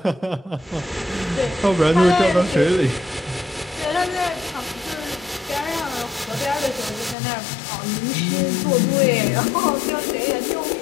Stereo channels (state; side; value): drops out; right; at 7.2 s